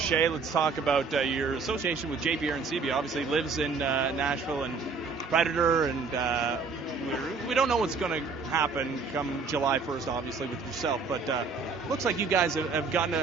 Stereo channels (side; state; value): left; quieter; 4.7 dB